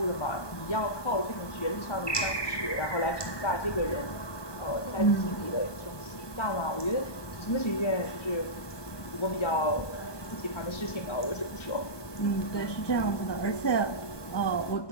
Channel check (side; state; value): right; late; 1.2 ms